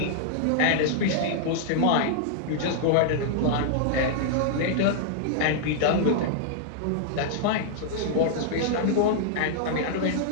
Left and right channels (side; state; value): both; different; correlation -0.01